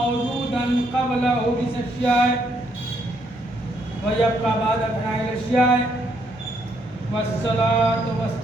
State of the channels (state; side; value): normal; both; correlation 0.73